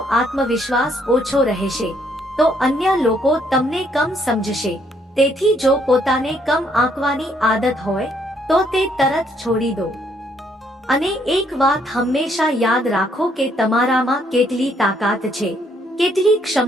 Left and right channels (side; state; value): both; normal; correlation 0.69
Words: આત્મવિશ્વાસ ઓછો રહેશે તો અન્ય લોકો તમને કમ સમજશે. તેથી જો પોતાને કમ આંકવાની આદત હોય તો તે તરત છોડી દો. અને એક વાત હંમેશા યાદ રાખો કે તમારામાં કેટલી તાકાત છે, કેટલી